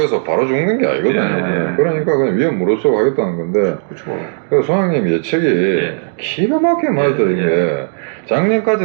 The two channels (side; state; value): left; silent; digital silence